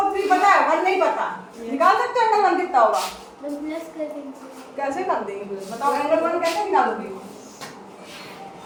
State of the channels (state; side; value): identical; both; correlation 1.00